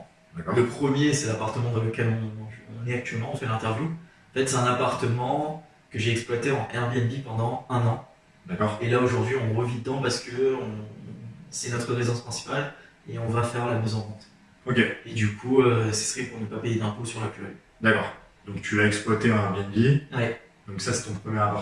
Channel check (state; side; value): identical; both; correlation 1.00